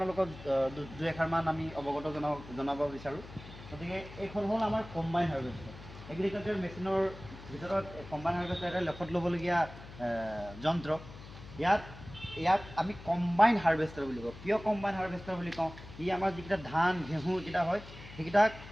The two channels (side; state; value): left; noise; hum, 16 dB below the sound